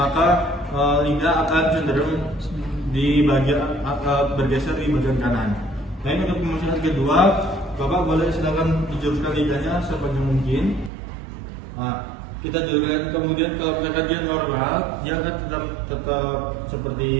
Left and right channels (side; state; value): left; drops out; at 10.9 s